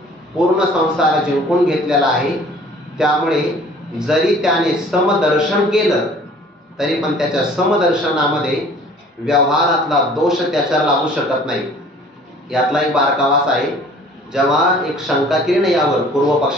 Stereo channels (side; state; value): both; normal; correlation 0.51